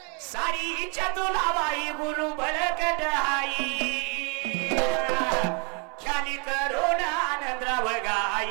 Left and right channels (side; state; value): left; quieter; 34.4 dB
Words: सारीच्या तुला वाही गुरु बरकट आई, ख्याली राव